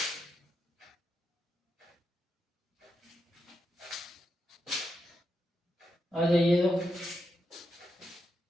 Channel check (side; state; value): both; normal; correlation 0.85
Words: आ जाइए, तो